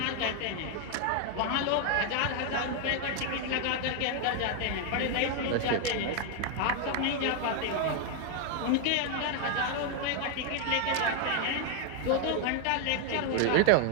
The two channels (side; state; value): both; different; correlation 0.01